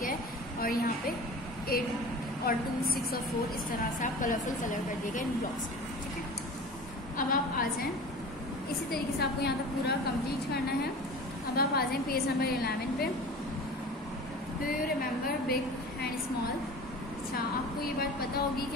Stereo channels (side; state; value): both; normal; correlation 0.38